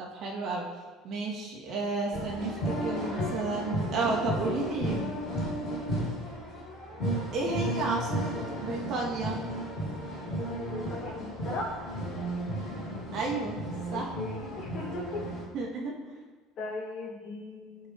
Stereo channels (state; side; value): normal; both; correlation 0.44